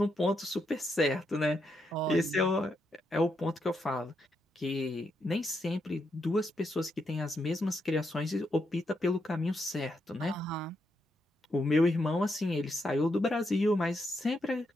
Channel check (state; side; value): normal; both; correlation 0.81